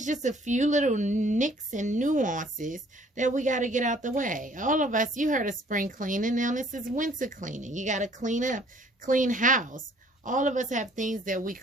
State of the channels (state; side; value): normal; both; correlation 0.58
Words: just a few little nicks and nuances that we got to get out the way. All of us, you heard of spring cleaning. Now this is winter cleaning. You got to clean up, clean house. All of us have things that we